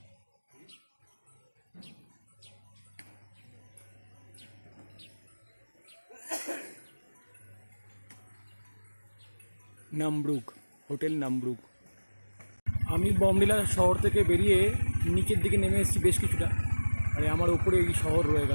নামব্রুক হোটেল, নামব্রুক। আমি বমডিলা শহর থেকে বেরিয়ে নিচের দিকে নেমে এসেছি বেশ কিছুটা, আর আমার উপরে এই শহর রয়ে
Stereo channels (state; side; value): inverted; both; correlation -1.00